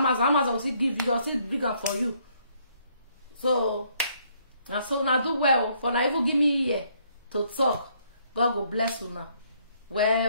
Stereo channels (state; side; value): inverted; both; correlation -0.68